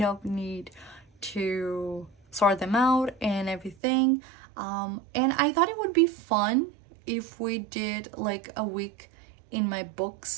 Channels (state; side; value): drops out; left; at 3.8 s